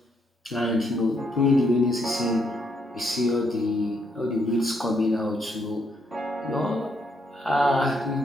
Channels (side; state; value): both; normal; correlation 0.75